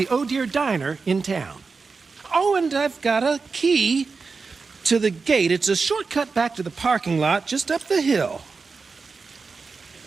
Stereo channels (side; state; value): left; quieter; 4.6 dB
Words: Oh Dear Diner in town. Oh, and I've got a key to the gate. It's a shortcut back to the parking lot just up the hill.